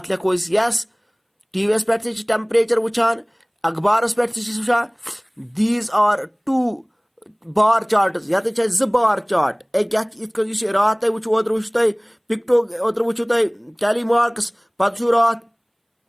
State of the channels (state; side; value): identical; both; correlation 1.00